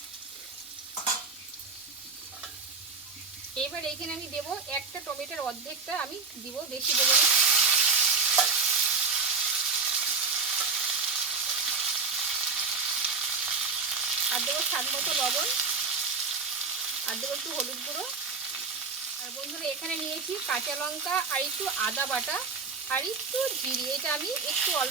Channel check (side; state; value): left; quieter; 4.8 dB